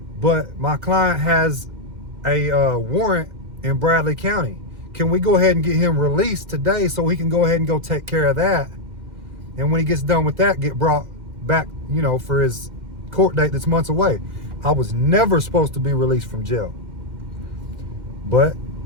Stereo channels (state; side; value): late; left; 2.1 ms